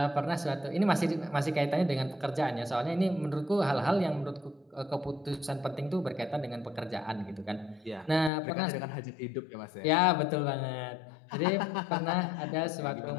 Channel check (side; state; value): right; drops out; at 8.3 s